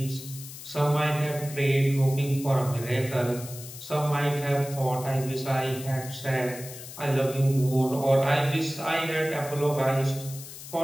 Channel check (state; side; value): noise; left; hiss, 13 dB below the sound